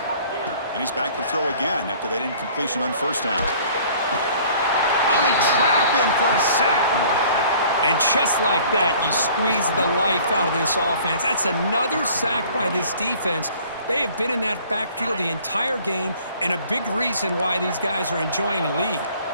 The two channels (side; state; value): both; inverted; correlation -0.52